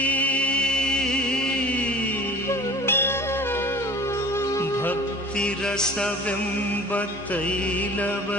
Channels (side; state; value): both; normal; correlation 0.42